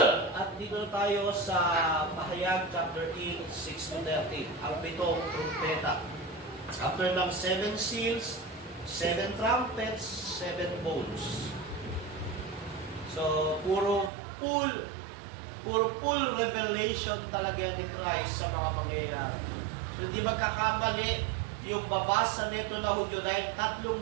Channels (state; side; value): drops out; left; at 14.1 s